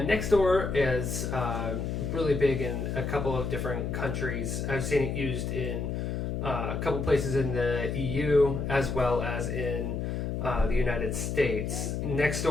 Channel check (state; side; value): noise; left; hum, 2 dB below the sound